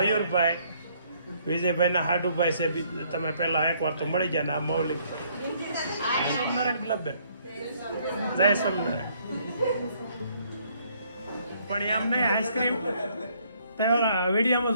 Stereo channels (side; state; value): both; inverted; correlation -0.66